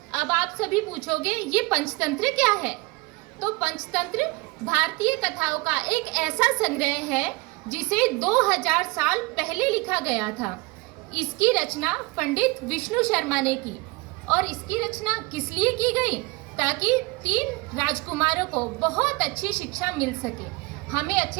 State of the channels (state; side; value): quieter; left; 24.3 dB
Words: अब आप सभी पूछोगे ये पंचतंत्र क्या है? तो पंचतंत्र भारतीय कथाओं का एक ऐसा संग्रह है जिसे 2000 साल पहले लिखा गया था। इसकी रचना पंडित विष्णु शर्मा ने की। और इसकी रचना किस लिए की गई? ताकि 3 राजकुमारों को बहुत अच्छी शिक्षा मिल सके। हमें